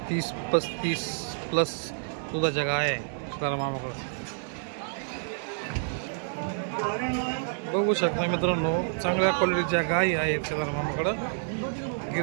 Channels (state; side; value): silent; left; digital silence